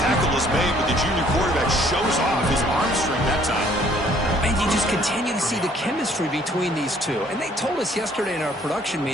is made, but the junior quarterback shows off his arm strength that time. And you just continue to see the chemistry between these two. And they told us yesterday in our production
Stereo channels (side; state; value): both; normal; correlation 0.60